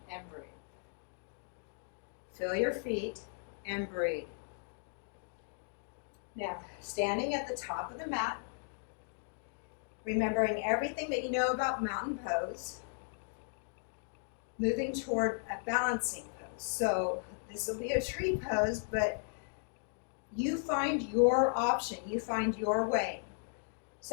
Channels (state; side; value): silent; right; digital silence